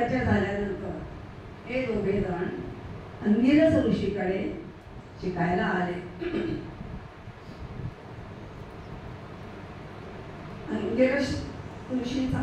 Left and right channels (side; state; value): both; identical; correlation 1.00